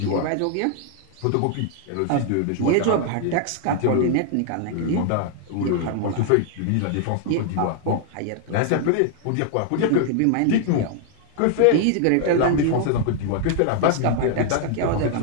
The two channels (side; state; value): both; different; correlation 0.00